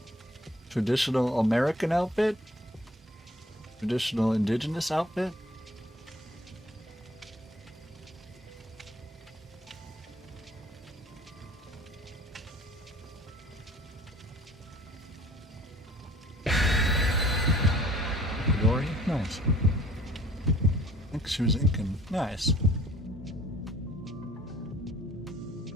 Traditional American outfit? Traditional indigenous outfit? Dory? Nice. I think she was Incan. Nice.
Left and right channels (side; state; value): both; normal; correlation 0.53